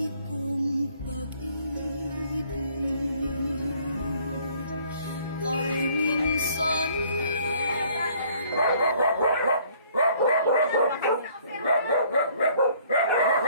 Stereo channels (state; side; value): inverted; both; correlation -0.60